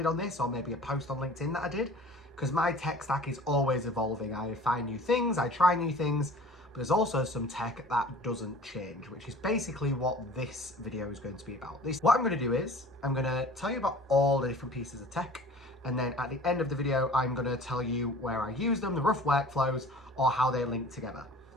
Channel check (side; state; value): both; normal; correlation 0.45